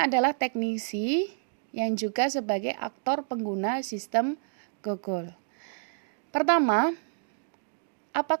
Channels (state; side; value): silent; left; digital silence